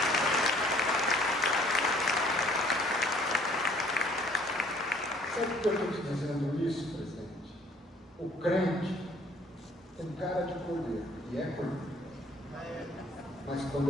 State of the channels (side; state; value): both; normal; correlation 0.58